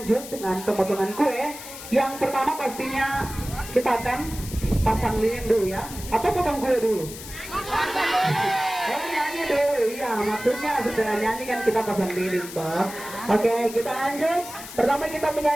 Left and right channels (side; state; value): left; noise; hiss, 13 dB below the sound